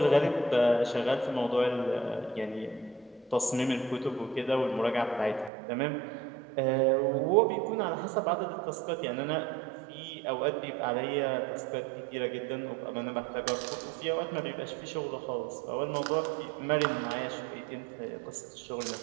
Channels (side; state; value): left; drops out; at 5.5 s